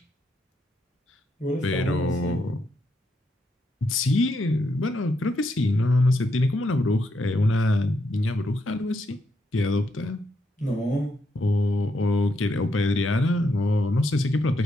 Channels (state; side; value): normal; both; correlation 0.79